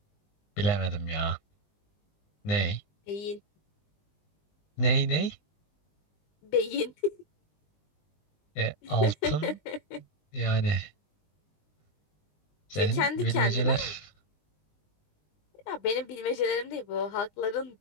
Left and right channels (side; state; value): right; late; 20 ms